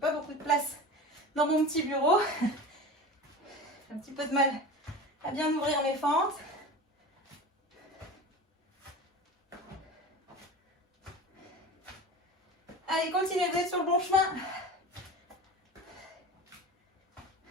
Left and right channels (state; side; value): normal; both; correlation 0.32